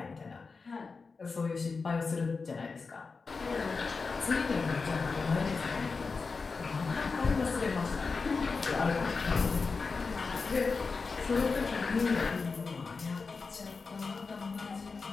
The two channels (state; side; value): quieter; right; 4.5 dB